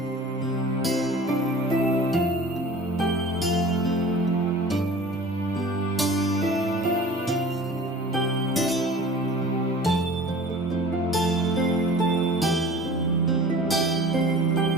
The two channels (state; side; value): normal; both; correlation 0.42